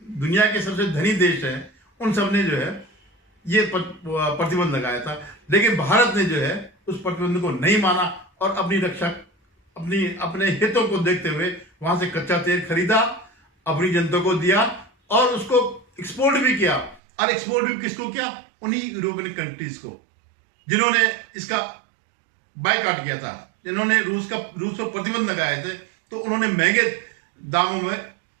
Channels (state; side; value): drops out; left; at 17.0 s